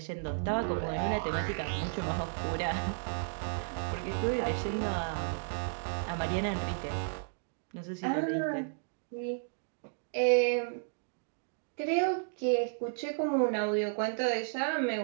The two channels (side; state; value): left; silent; digital silence